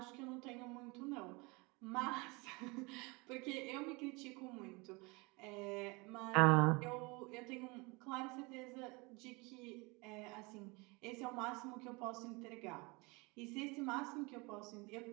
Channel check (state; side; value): quieter; left; 26.9 dB